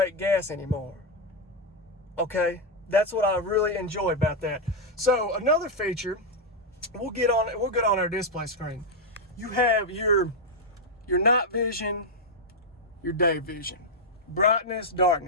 anymore. Okay, that's what I really enjoy about that. So another feature, we'll get on our display screen. You have your night vision, your day vision. Brightness,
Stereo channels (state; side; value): normal; both; correlation 0.00